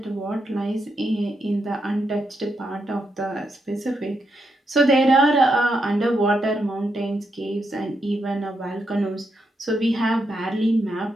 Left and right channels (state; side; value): normal; both; correlation 0.82